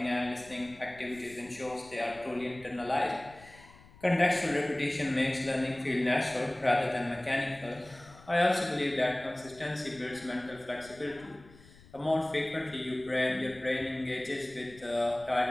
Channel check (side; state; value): left; noise; rumble, 23 dB below the sound